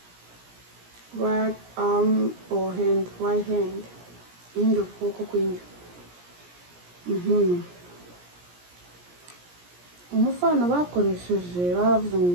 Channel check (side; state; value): left; late; 17 ms